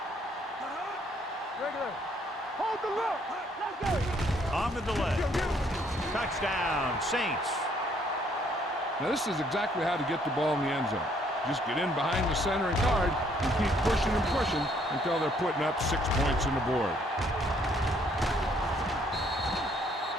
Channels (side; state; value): both; normal; correlation 0.66